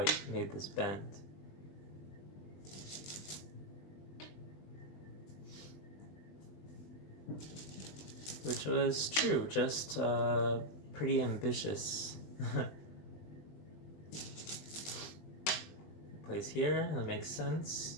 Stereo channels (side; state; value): right; late; 20 ms